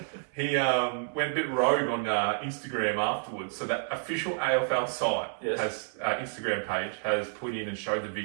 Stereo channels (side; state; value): left; silent; digital silence